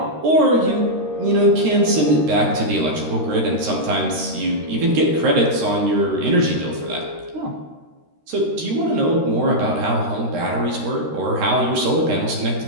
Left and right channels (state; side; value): late; left; 13 ms